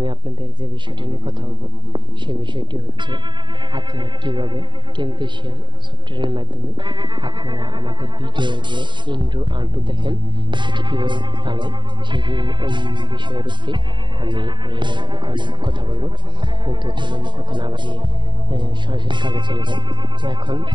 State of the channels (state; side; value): late; left; 0.23 ms